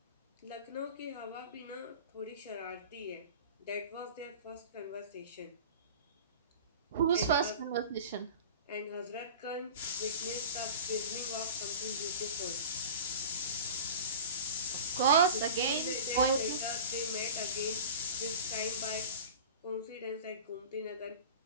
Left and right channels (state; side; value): inverted; both; correlation -0.35